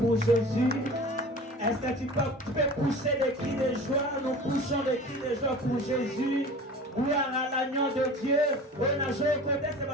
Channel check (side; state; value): both; normal; correlation 0.39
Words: Jésus? Est-ce que tu peux pousser des cris de joie? Nous poussons des cris de joie pour Jésus. Gloire à l'agneau de Dieu. On a joué au côté, c'est